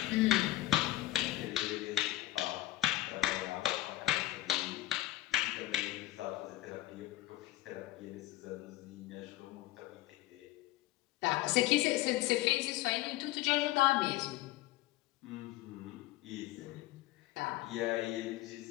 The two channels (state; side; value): quieter; right; 16.4 dB